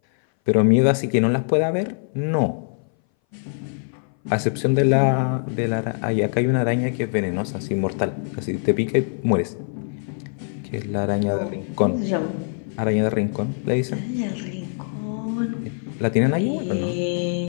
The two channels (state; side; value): silent; right; 60 dB below the other